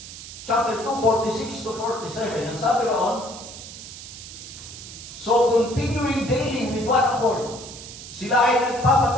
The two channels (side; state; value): right; noise; hiss, 13 dB below the sound